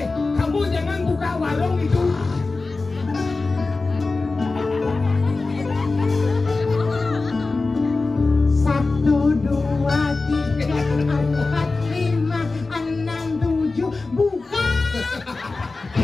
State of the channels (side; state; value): right; quieter; 3.7 dB